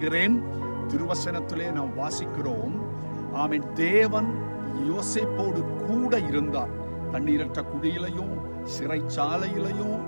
திருவசனத்திலே நாம் வாசிக்கிறோம், ஆமென், தேவன் யோசேப்போடு கூட இருந்தார். தண்ணீரற்ற குடியிலையும் சிறைச்சாலையிலையும்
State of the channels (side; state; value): both; inverted; correlation -1.00